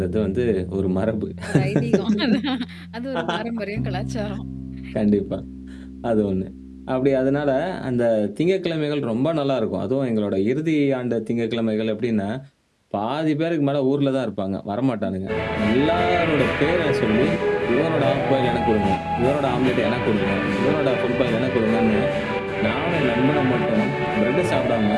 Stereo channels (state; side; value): identical; both; correlation 1.00